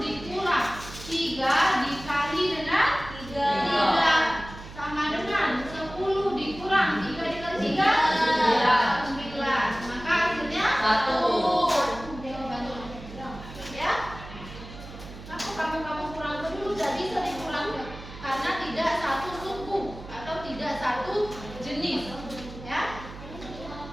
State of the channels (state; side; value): noise; right; hum, 14 dB below the sound